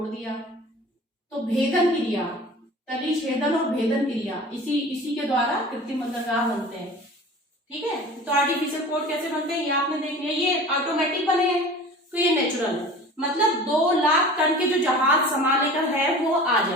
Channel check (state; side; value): normal; both; correlation 0.40